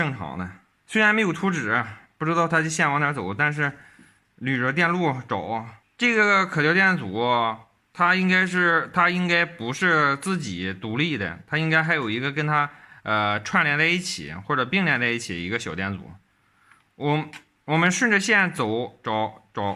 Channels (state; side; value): identical; both; correlation 1.00